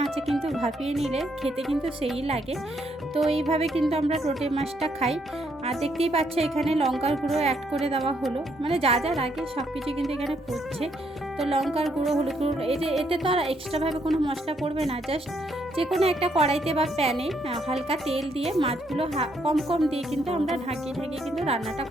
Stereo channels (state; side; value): normal; both; correlation 0.73